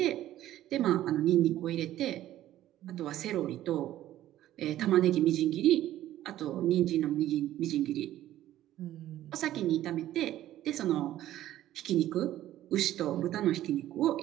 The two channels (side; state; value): left; quieter; 13.5 dB